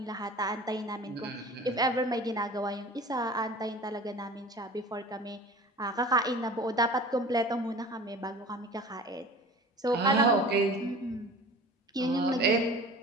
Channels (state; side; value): normal; both; correlation 0.40